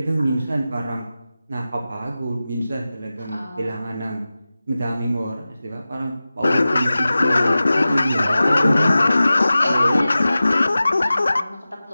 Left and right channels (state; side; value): inverted; both; correlation -0.95